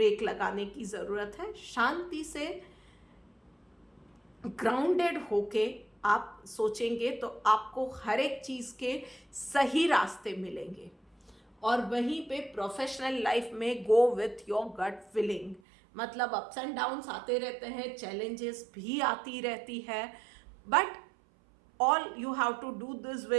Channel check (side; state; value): left; drops out; at 15.6 s